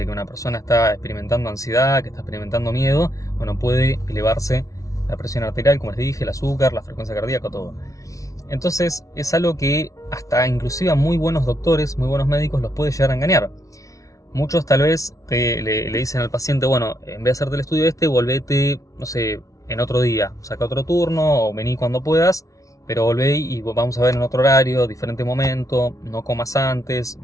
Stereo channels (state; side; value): late; right; 0.16 ms